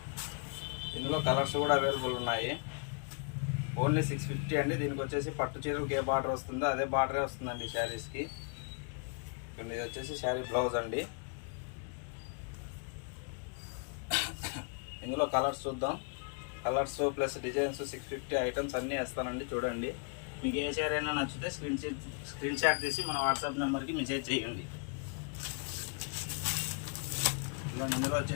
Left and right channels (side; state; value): right; quieter; 38.6 dB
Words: ఇందులో కలర్స్ కూడా అవైలబుల్ ఉన్నాయి. ఓన్లీ 650 అండి. దీనికి వచ్చేసి పట్టు చీరలకు ఏ బార్డర్ వస్తుందో అదే బార్డరే వస్తుందండి శారీస్కి. ఇది వచ్చేసి శారీ బ్లౌజ్ అండి. ఇందులో కలర్స్ చూద్దాం. కలర్స్ ప్లస్ డిజైన్స్ 650 ఐటమ్స్ అన్నీ వేస్తానండి. చూడండి, మీకు ఏ శారీ అయినా నచ్చితే స్క్రీన్ షాట్ తీసి మన వాట్సాప్ నెంబర్కి మెసేజ్ చేయండి. ఇందులో